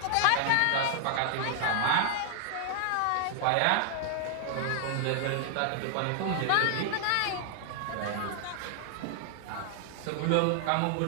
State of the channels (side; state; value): both; different; correlation 0.00